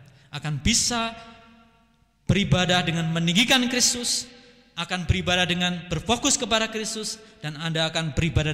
akan bisa beribadah dengan meninggikan Kristus, akan beribadah dengan berfokus kepada Kristus, dan Anda akan beribadah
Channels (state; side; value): identical; both; correlation 1.00